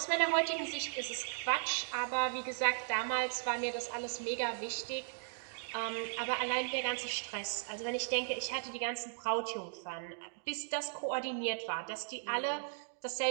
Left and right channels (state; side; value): silent; left; digital silence